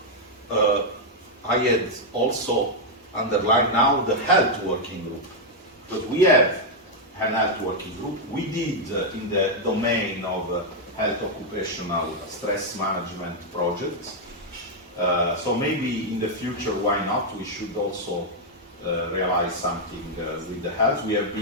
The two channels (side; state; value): both; normal; correlation -0.01